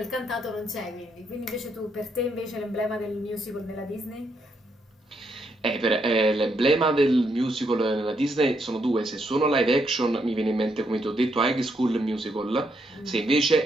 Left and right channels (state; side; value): normal; both; correlation 0.77